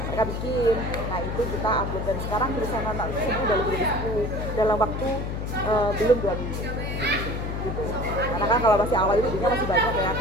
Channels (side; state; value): left; noise; hum, 4 dB below the sound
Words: Mereka bikin, nah itu kita upload, dan sekarang tulisan anak itu semua udah lebih dari 10 dalam waktu belum 2 minggu gitu. Karena kan kalau masih awal itu dunia masih banyak ya,